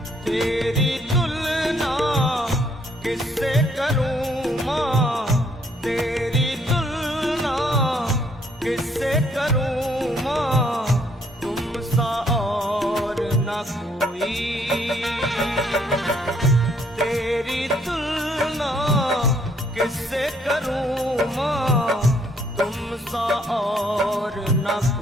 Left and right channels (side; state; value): both; normal; correlation 0.67